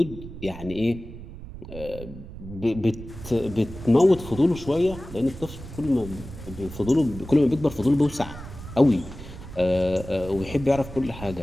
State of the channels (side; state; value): right; noise; rumble, 13 dB below the sound